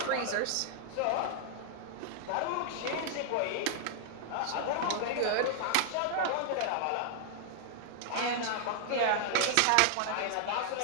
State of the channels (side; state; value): both; different; correlation -0.01